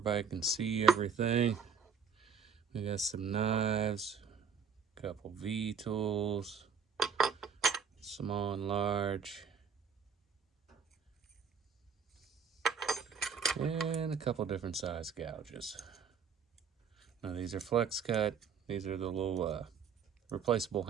can see everything. We got some knives, a couple V-tools, small and large, and a couple different size gouges. Now these are flex cut. These are the little replaceable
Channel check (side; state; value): left; quieter; 6.3 dB